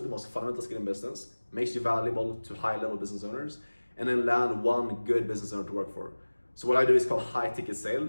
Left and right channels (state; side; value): inverted; both; correlation -1.00